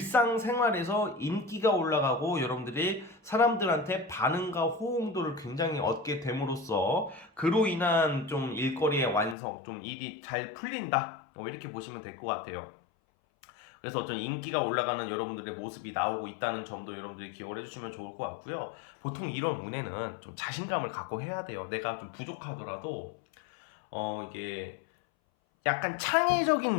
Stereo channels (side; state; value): right; drops out; at 9.3 s